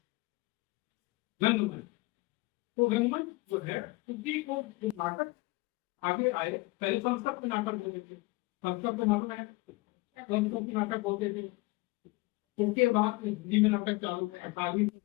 रंगमंच। तो रंगमंच जो है उसी को जो नाटक आगे आए, पहले संस्कृत में नाटक होते थे, संस्कृत में मालूम है संस्कृत में नाटक होते थे। उसके बाद हिंदी में नाटक चालू हुए 18वीं।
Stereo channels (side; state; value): right; quieter; 23.3 dB